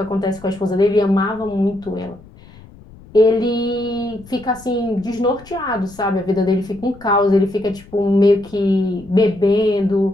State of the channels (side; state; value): left; noise; rumble, 22 dB below the sound